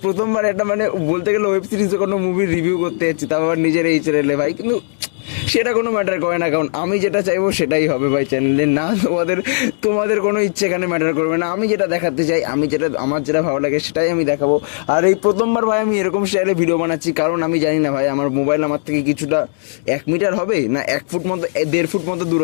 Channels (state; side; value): silent; right; 68 dB below the other